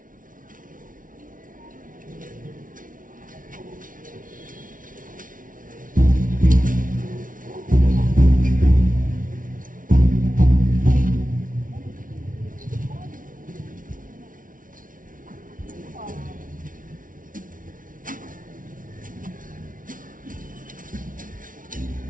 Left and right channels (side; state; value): left; late; 0.39 ms